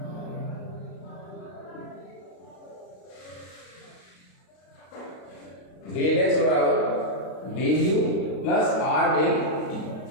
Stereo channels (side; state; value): right; late; 32 ms